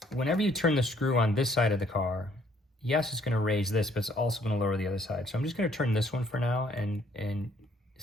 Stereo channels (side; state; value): both; normal; correlation 0.64